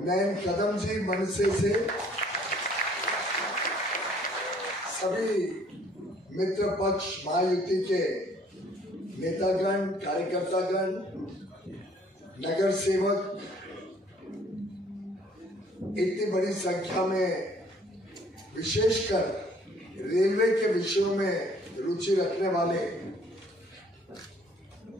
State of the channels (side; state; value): both; normal; correlation 0.59